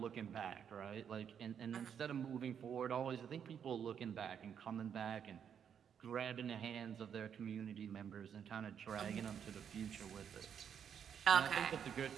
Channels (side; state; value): left; quieter; 8.1 dB